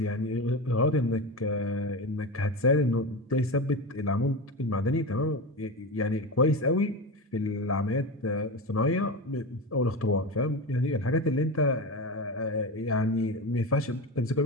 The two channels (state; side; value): normal; both; correlation 0.21